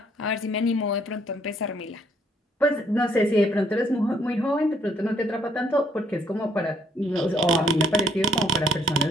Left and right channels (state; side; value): normal; both; correlation 0.67